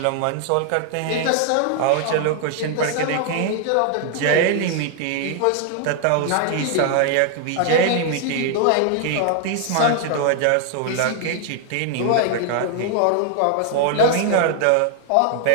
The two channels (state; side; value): different; both; correlation 0.00